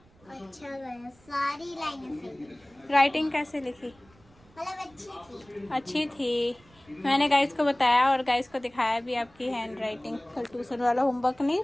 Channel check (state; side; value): noise; right; rumble, 29 dB below the sound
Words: अच्छा गया, सारी लाइनें सही। राइटिंग कैसे लिखी? मतलब अच्छी थी। अच्छी थी। मैंने गाइस को बताया और गाइस को दिखाया भी आपकी हैंड राइटिंग। कल ट्यूशन वाला होमवर्क नहीं